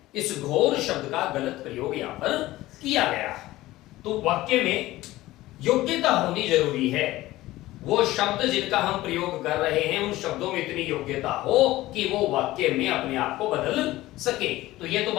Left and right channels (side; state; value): right; quieter; 17.1 dB